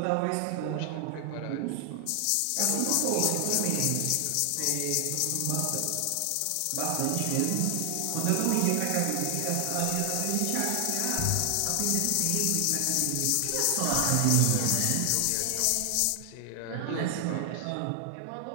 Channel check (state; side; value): different; both; correlation 0.00